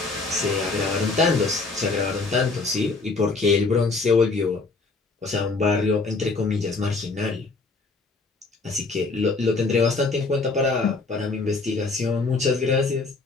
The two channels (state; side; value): quieter; right; 3.8 dB